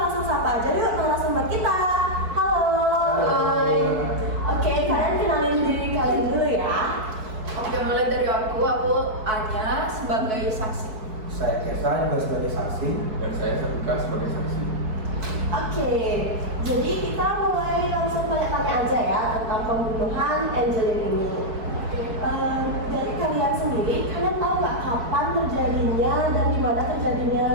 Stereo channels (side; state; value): left; late; 4.6 ms